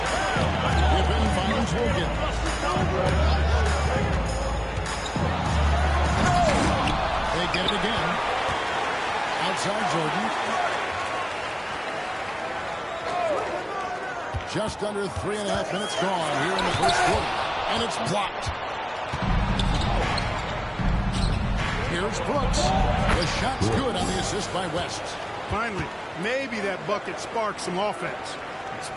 Pippen finds Wilkins. They get it again. Outside Jordan. Just under 3.5 minutes gone here in the first quarter. And it's blocked. Here's Brooks. The shot's good on the assist by West. Finally, maybe that bucket sparks some offense. It's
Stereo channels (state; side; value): identical; both; correlation 1.00